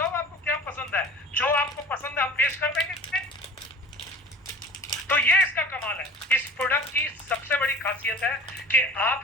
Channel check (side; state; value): both; normal; correlation 0.40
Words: आपको क्या पसंद है, जो आपको पसंद है हम पेश कर देंगे। तो ये इसका कमाल है। इस प्रोडक्ट की सबसे बड़ी खासियत है कि